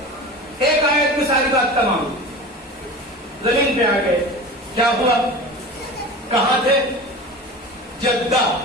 ایک آیت میں ساری بات تمام، زمین پہ آ گئے، کیا ہوا؟ کہاں تھے؟ جدہ،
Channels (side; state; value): both; normal; correlation 0.33